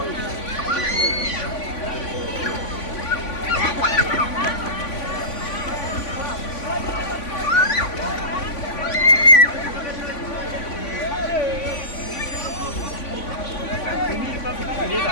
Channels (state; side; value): late; right; 3.5 ms